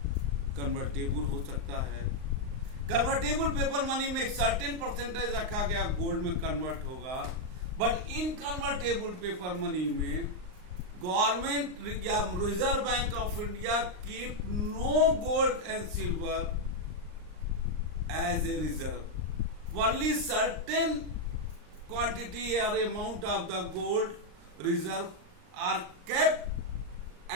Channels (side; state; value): left; late; 39 ms